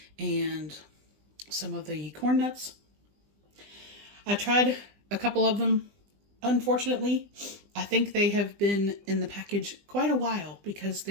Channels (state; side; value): late; left; 20 ms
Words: and some of the corn nuts. I tried a couple of them. Unfortunately, I think they have been in the package quite a while because